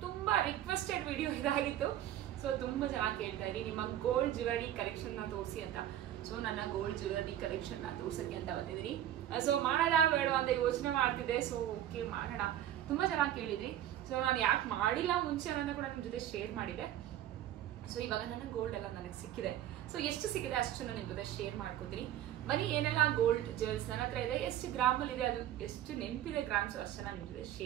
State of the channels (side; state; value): left; quieter; 12.0 dB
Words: ತುಂಬಾ ರಿಕ್ವೆಸ್ಟೆಡ್ ವಿಡಿಯೋ ಇದಾಗಿತ್ತು. ಸೊ ತುಂಬಾ ಚೆನ್ನಾಗಿ ಕೇಳ್ತಾ ಇದ್ದೀನಿ, ನಿಮ್ಮ ಗೋಲ್ಡ್ ಜ್ಯುವೆಲರಿ ಕಲೆಕ್ಷನ್ ನ ತೋರಿಸಿ ಅಂತ. ಸೊ ನನ್ನ ಗೋಲ್ಡ್ ಜ್ಯುವೆಲರಿ ಕಲೆಕ್ಷನ್ ನ ತೋರ್ಸಕ್ಕೆ ಅಂತ ಬಂದಿದ್ದೀನಿ. ಸೊ ಮಾಡೋಣ ಬೇಡ ಅಂತ ಯೋಚನೆ ಮಾಡ್ತಿದ್ದೆ. ಸೊ ಓಕೆ ಮಾಡೋಣ, ತುಂಬಾ ಚೆನ್ನಾಗಿ ಕೇಳಿದ್ರಿ. ಸೊ ನಾನು ಯಾಕೆ ಮಾಡಿಲ್ಲ ಮುಂಚೆ ಅನ್ನೋದನ್ನ ಕೂಡ ನಿಮ್ ಜೊತೆ ಶೇರ್ ಮಾಡಿದೆ. ಸೊ ಇವಾಗ ನನ್ನ ಗೋಲ್ಡ್ ಎಲ್ಲ ನನಗೆ ಸಿಕ್ಕಿದೆ. ಸೊ ಎಷ್ಟು ಸಿಕ್ಕಿದೆ ಅಷ್ಟು ನಾನು ನಿಮ್ ಜೊತೆ ಶೇರ್ ಮಾಡ್ಕೋತೀನಿ. ಬನ್ನಿ, ಏನೆಲ್ಲ ಗೋಲ್ಡ್ ಜ್ಯುವೆಲ್ಸ್ ನನ್ನ ಹತ್ರ ಇದೆ, ಎಷ್ಟು ಗ್ರಾಮಲ್ಲಿ ಇದೆ, ಅದು ಎಷ್ಟು ನೆನಪಿದೆ ಗ್ರಾಮ್ಸ್ ಅಷ್ಟು ನಾನು ನಿಮ್ ಜೊತೆ